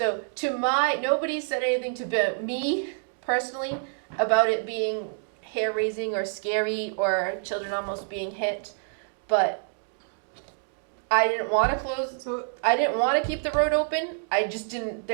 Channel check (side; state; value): left; silent; digital silence